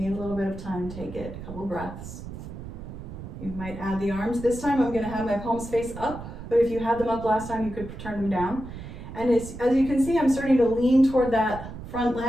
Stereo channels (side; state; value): right; noise; rumble, 11 dB below the sound